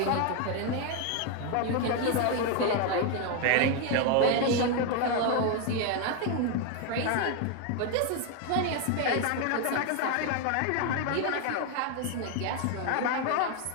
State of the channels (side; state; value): both; different; correlation 0.01